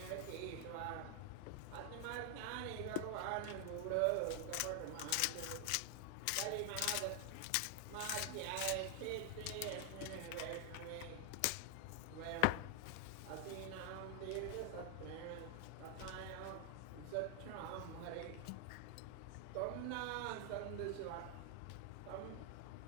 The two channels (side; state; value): both; different; correlation 0.00